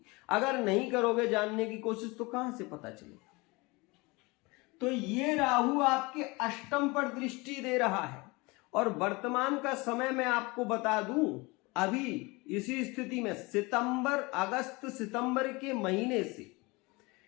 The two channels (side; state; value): right; quieter; 25.0 dB